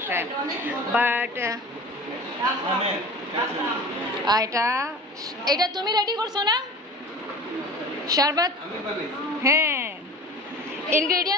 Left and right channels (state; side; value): normal; both; correlation 0.38